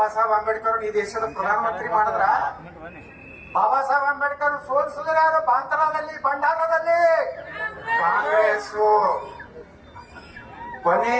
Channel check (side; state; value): both; identical; correlation 1.00